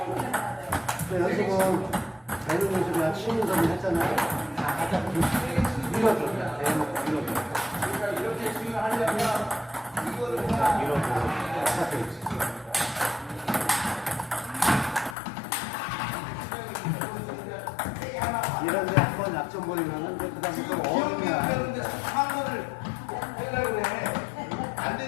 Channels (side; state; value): right; drops out; at 15.2 s